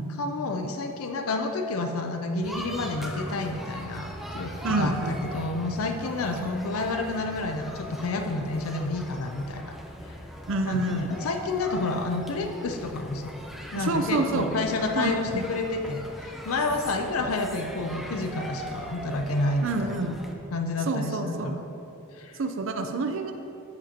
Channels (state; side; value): normal; both; correlation 0.28